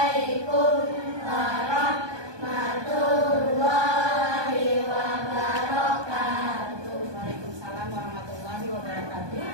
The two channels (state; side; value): late; left; 1.2 ms